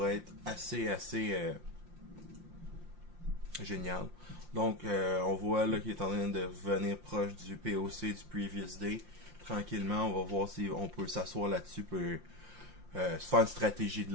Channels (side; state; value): left; late; 5.7 ms